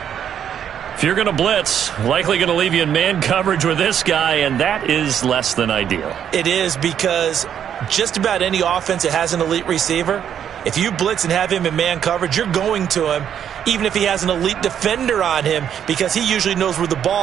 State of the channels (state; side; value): quieter; left; 9.1 dB